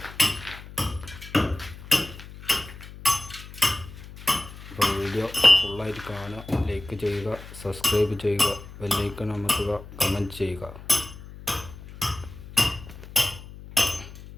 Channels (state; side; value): noise; left; hum, 15 dB below the sound